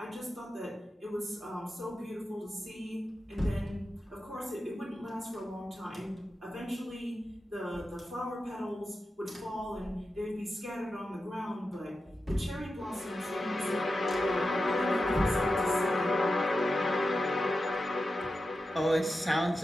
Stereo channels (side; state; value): both; normal; correlation 0.91